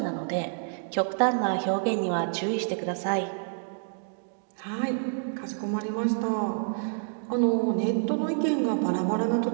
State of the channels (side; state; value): left; silent; digital silence